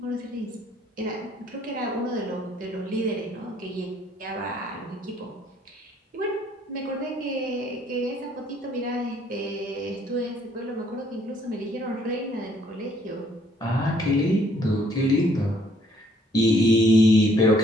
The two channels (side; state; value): both; normal; correlation 0.64